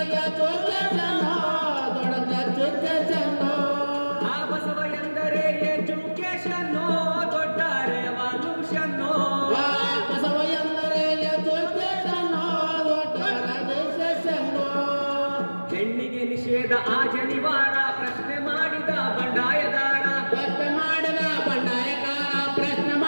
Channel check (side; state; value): both; inverted; correlation -1.00